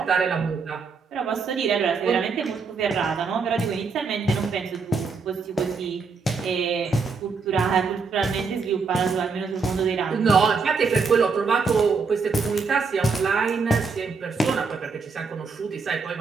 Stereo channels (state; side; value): quieter; left; 4.8 dB